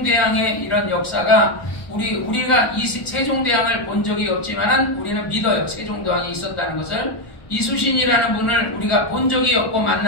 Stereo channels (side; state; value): right; late; 1.2 ms